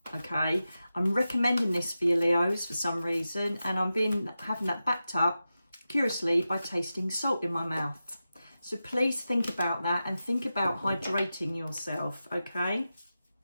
Okay, I'm recommending this for you Leos for some reason, and I'm having that backed up curiously by tasting salt in my mouth. So please think about that and think about hydrating yourself. Okay,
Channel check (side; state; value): both; inverted; correlation -0.92